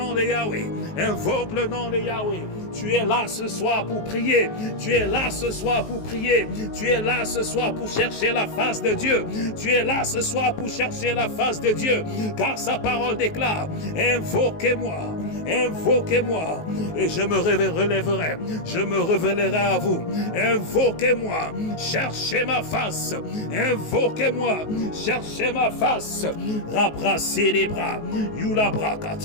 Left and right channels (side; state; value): right; late; 19 ms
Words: de Yahweh, invoque le nom de Yahweh. Tu es là ce soir pour prier, tu es là ce soir pour prier, tu es là ce soir pour chercher la face de Dieu, tu es là ce soir pour chercher la face de Dieu, car sa parole déclare, invoquez-moi, invoquez-moi, et je me relèverai, je me révélerai à vous, invoquez-moi, cherchez ma face, invoquez-moi, cherchez ma face, rabrassez les bras, yula